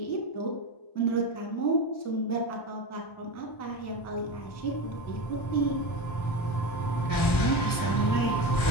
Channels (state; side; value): late; right; 1.4 ms